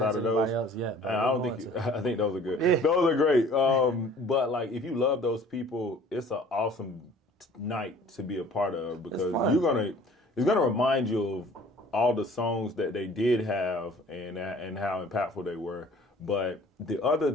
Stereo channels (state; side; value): normal; both; correlation 0.50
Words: of those? I think those are good. Yeah. Those are great. But like, if you love those people, it's an awesome night to be a part of because it's gonna remind you of all the songs that they did have and how impactful they were. But the other